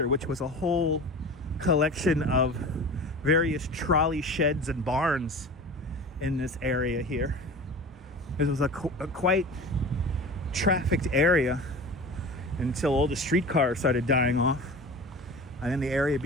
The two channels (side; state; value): both; normal; correlation 0.35